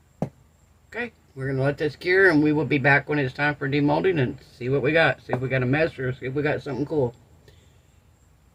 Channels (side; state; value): both; identical; correlation 1.00